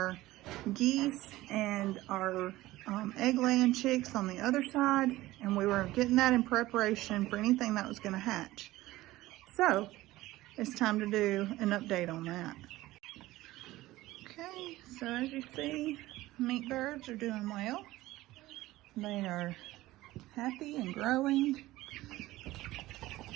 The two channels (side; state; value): left; quieter; 17.3 dB